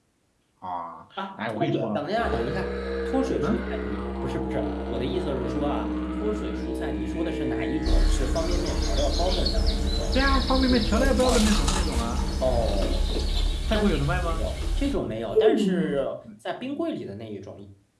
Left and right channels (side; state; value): both; identical; correlation 1.00